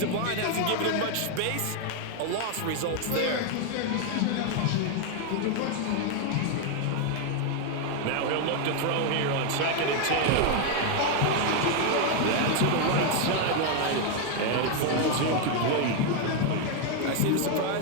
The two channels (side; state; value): both; different; correlation 0.01